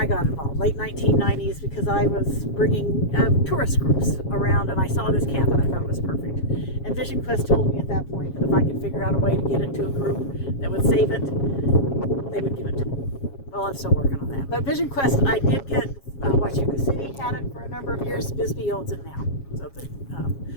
got involved, late 1990s, because I was bringing tourist groups around, and I saw this camp, and I thought it was perfect. And Vision Quest told me at that point that if I could figure out a way to get it to a group that would save it, they would give it to me. Well, I'm still working on that. But Vision Quest, I did get, S.G.O.C.C had it for a number of years. Bisbee owns it now. So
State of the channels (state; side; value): late; right; 7.3 ms